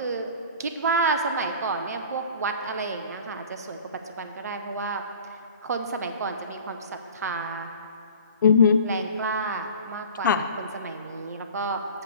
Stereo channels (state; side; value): inverted; both; correlation -0.42